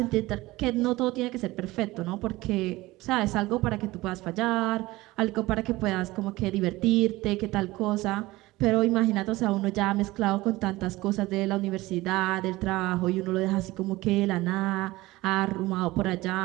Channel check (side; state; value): left; quieter; 19.4 dB